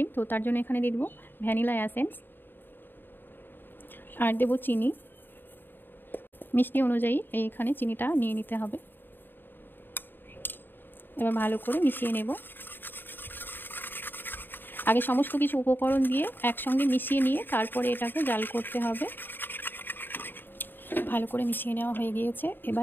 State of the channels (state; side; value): late; right; 0.095 ms